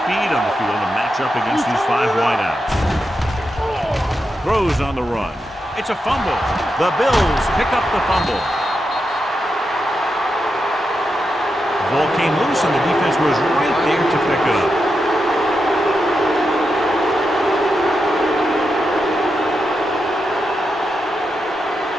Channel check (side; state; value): both; normal; correlation 0.87